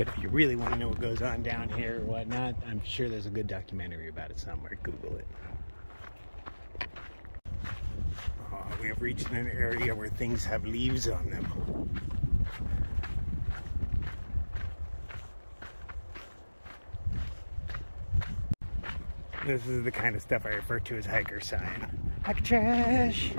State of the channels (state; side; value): inverted; both; correlation -1.00